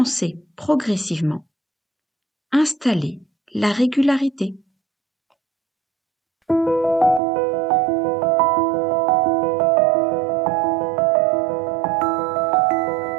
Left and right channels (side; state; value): left; drops out; at 7.2 s